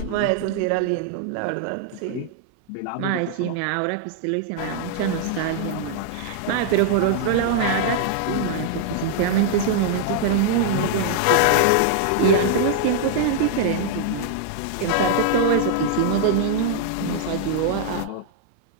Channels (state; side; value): different; both; correlation -0.01